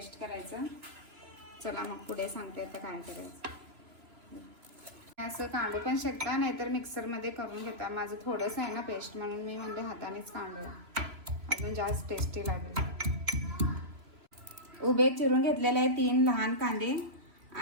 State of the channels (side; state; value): left; late; 3.0 ms